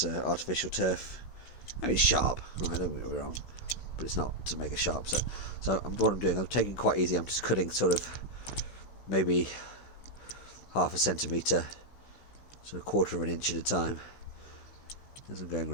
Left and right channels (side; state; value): right; late; 16 ms